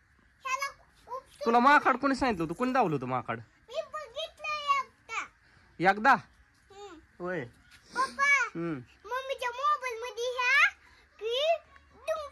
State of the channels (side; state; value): both; identical; correlation 1.00